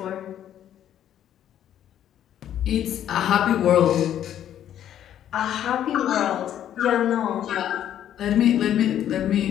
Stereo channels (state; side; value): quieter; right; 10.8 dB